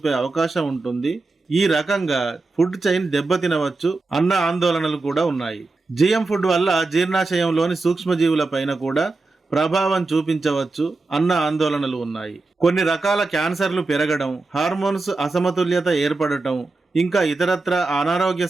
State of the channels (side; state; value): left; quieter; 3.5 dB